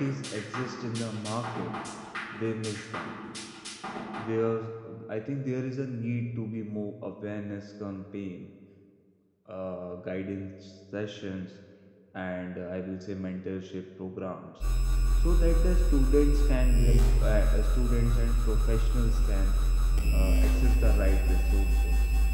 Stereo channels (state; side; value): identical; both; correlation 1.00